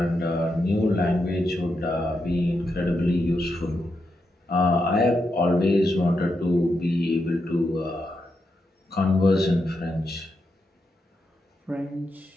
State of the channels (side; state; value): both; normal; correlation 0.84